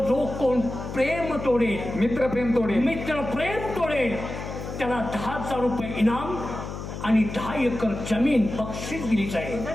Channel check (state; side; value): noise; left; hum, 8 dB below the sound